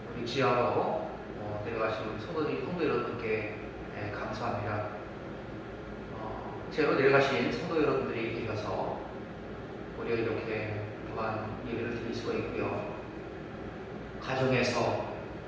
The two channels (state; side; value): identical; both; correlation 1.00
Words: 우리 지하로 내려가신 성도 여러분께 감사합니다. 제로 내려가신 성도 여러분들이 계셔서 우리가 이렇게 또한 예배를 드릴 수가 있고요. 가정에서